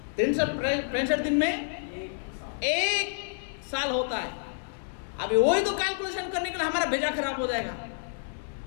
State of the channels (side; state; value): right; silent; 59 dB below the other